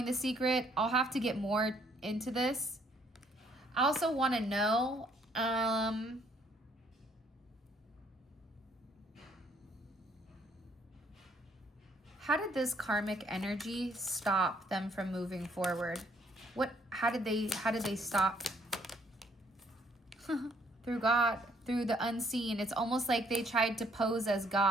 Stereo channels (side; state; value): both; normal; correlation 0.66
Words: the secret. I'll have to get more into this. I also want to know, how did this karmic energy stop them from moving forward? How did they stop? Through God, through the unseen. It's almost like they tried to pose as